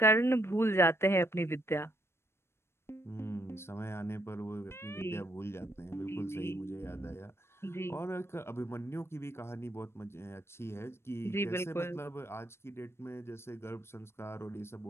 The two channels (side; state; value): right; late; 0.12 ms